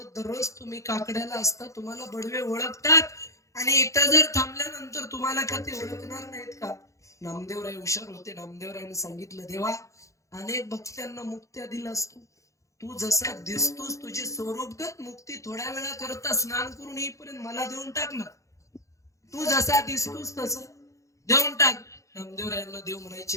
दररोज तुम्ही काकड्याला असता, तुम्हाला बडवे ओळखतात, आणि इथं जर थांबल्यानंतर तुम्हाला का ते ओळखणार नाहीत का? नामदेवराय हुशार होते. नामदेवरायाने सांगितलं, देवा अनेक भक्तांना मुक्त्या दिलास तू जसा दिसतोस, तुझी स्वरूपगत मुक्ती थोड्या वेळा करता स्नान करून येईपर्यंत मला देऊन टाक ना. तू जसा दिसतोस तसं देऊन टाक. नामदेवरायांना देव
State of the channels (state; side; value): late; right; 0.15 ms